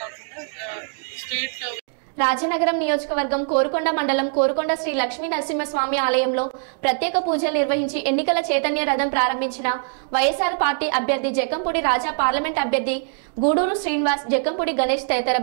కాకుండా స్టేట్ రాజనగరం నియోజకవర్గం కోరుకొండ మండలం కోరుకొండ శ్రీ లక్ష్మీ నరసింహస్వామి ఆలయంలో ప్రత్యేక పూజలు నిర్వహించి ఎన్నికల చైతన్య రథం ప్రారంభించిన వైఎస్ఆర్ పార్టీ అభ్యర్థి జక్కంపూడి రాజా, పార్లమెంట్ అభ్యర్థి గూడూరు శ్రీనివాస్, జక్కంపూడి గణేష్ తదితర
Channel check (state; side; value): silent; left; digital silence